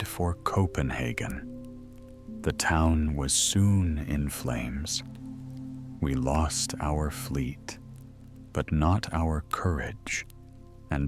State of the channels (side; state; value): both; identical; correlation 1.00